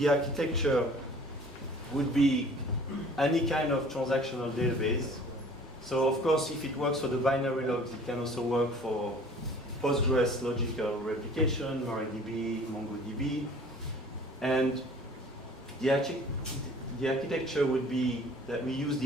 architecture would be any kind of transactional database. So of course, if it works for the binary logs, it can also work for Postgres logical replication, MariaDB, MongoDB. And the architecture would be that we use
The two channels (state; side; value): normal; both; correlation 0.50